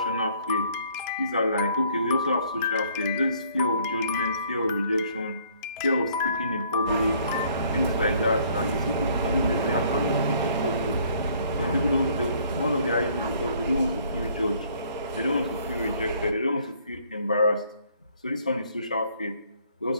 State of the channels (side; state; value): both; inverted; correlation -0.61